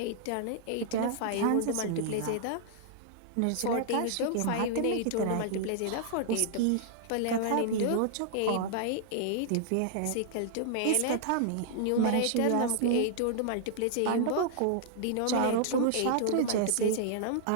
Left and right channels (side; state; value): both; different; correlation -0.01